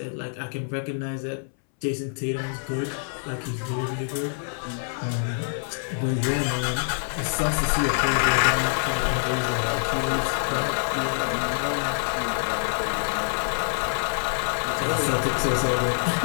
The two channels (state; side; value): silent; right; 61 dB below the other